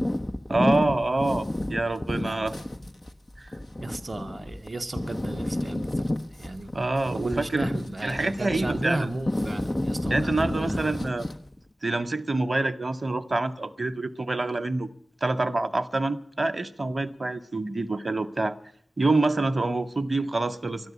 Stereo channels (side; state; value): both; normal; correlation 0.96